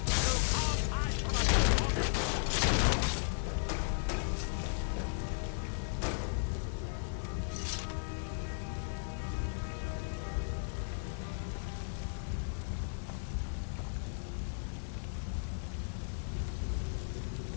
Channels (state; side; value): silent; right; digital silence